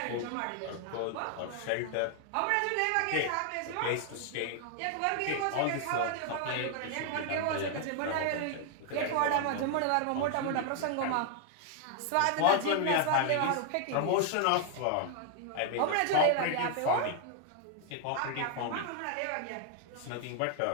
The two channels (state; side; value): different; both; correlation 0.00